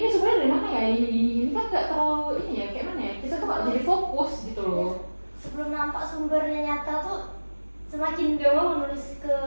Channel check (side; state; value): both; inverted; correlation -1.00